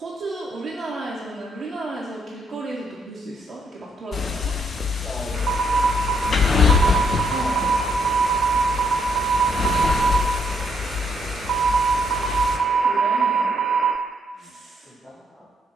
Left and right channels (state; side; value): normal; both; correlation 0.73